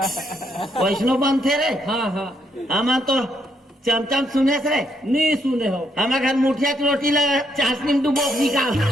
बनते रे। हाँ हाँ हम तो चमचम सुने से नहीं सुने हो। हमारे घर मुठिया की रोटी लगा चाशनी में डुबो निकाल।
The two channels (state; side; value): normal; both; correlation 0.75